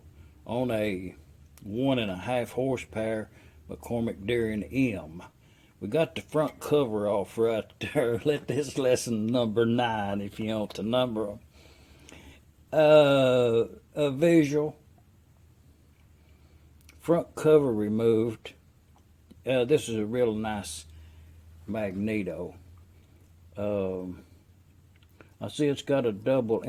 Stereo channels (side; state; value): both; identical; correlation 1.00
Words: on a 1.5 horsepower McCormick Darien M. We got the front cover off right there. Let this lesson number 9 if you want to number them. A visual. Front cover removed. This is a real nice magneto. I see it's got a double